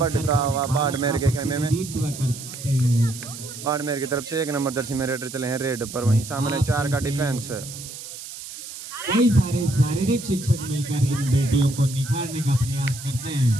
हुआ बाड़मेर के खेमे में। प्रतिनिधित्व करते हैं। बाड़मेर की तरफ से 1 नंबर जर्सी में रेडर चले हैं रेड पर, वहीं सामने 4 का डिफेंस। कई सारे शारीरिक शिक्षक मिलकर इन बेटियों को निखारने का प्रयास करते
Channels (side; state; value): right; noise; hiss, 12 dB below the sound